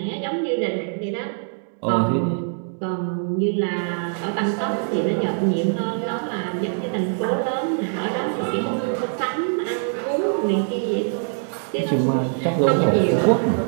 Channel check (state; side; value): silent; left; 63 dB below the other